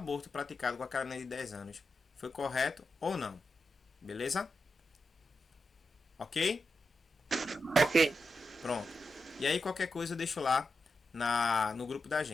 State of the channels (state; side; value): normal; both; correlation 0.88